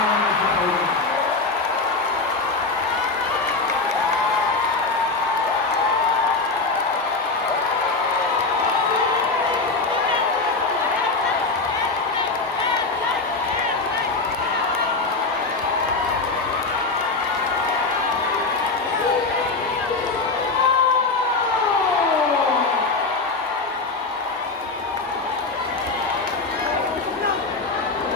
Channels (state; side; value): quieter; right; 3.7 dB